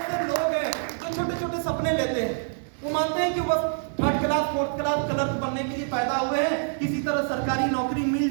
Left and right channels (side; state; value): left; silent; 61 dB below the other